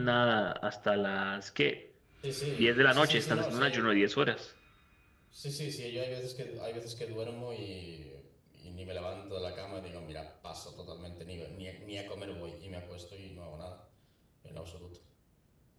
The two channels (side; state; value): both; identical; correlation 1.00